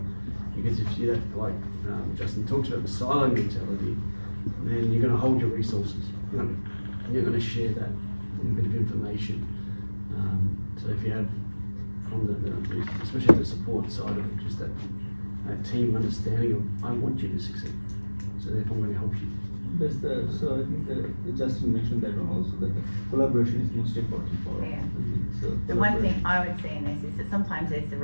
Because if you that, like Justin talks about the silo mentality, then you're going to hold your resources. You're going to share that bit of information. So if you have from especially the support side of it, just that team understanding of I want you to succeed, so therefore I'm going to help you. That's so I think Justin mentioned that one also, that the collaboration is most important for us. Yeah. So The one collaboration. thing I would see in this is that sometimes there's the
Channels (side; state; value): both; inverted; correlation -1.00